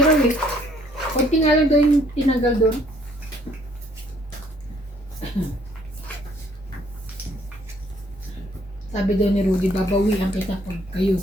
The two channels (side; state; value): both; normal; correlation 0.63